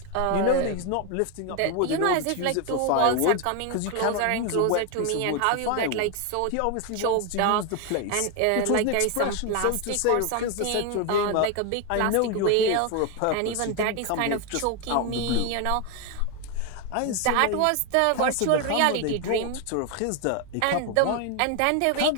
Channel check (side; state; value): both; different; correlation 0.01